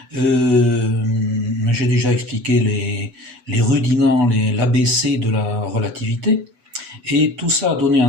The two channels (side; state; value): left; late; 8.1 ms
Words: j'ai déjà expliqué les rudiments, l'ABC de la relativité, et tout ça a donné